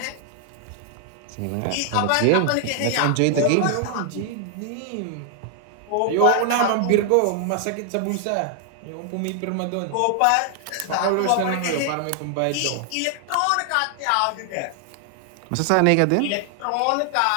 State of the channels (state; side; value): different; both; correlation 0.00